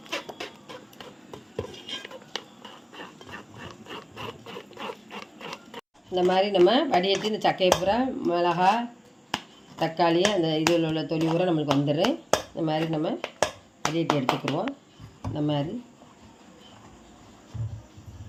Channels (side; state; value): both; identical; correlation 1.00